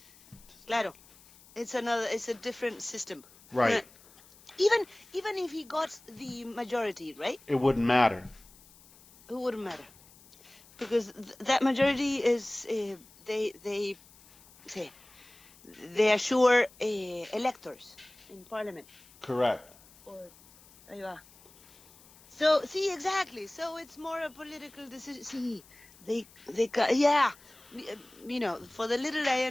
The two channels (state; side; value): noise; left; hiss, 25 dB below the sound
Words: claro, it's a different system. Right. Even if he got the majority, right? It wouldn't matter. It wouldn't matter, because that majority is they assure electors in parliament. Correct. Or, so see, exactly. So it's more a political decision. See, you know, for the little I